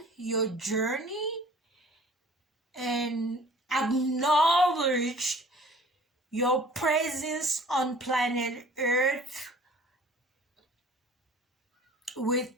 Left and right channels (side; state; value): both; normal; correlation 0.49